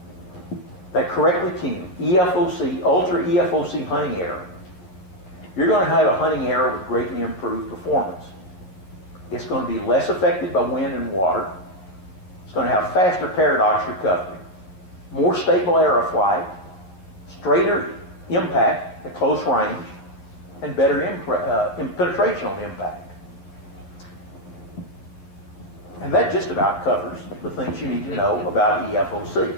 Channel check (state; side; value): late; right; 11 ms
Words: that correctly tuned EFOC, ultra EFOC hunting error, you're going to have a hunting error with greatly improved performance. It's going to be less affected by wind and water. It's going to have faster paradox recovery, more stable aeroflight, straighter impact at close range, and better penetration on impact. And that just about covers the things you need to know about EFOC.